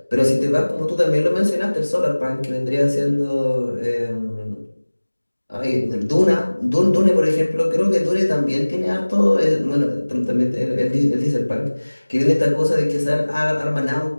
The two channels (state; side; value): inverted; both; correlation -1.00